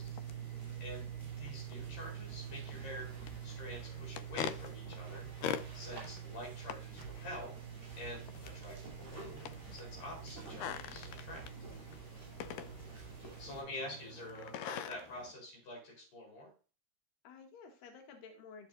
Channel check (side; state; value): right; late; 13 ms